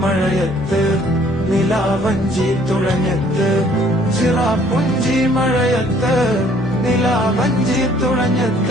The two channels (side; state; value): both; normal; correlation 0.60